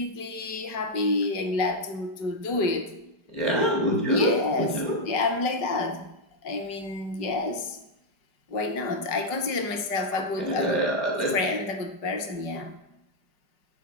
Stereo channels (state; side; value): late; right; 5.0 ms